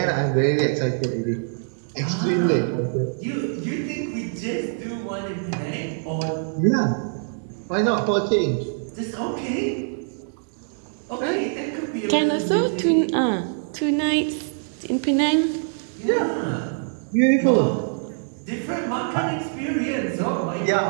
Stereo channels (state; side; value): silent; left; 63 dB below the other